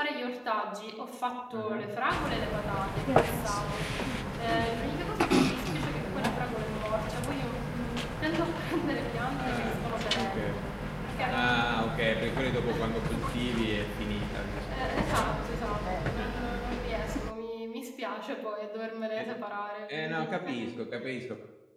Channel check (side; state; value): both; identical; correlation 1.00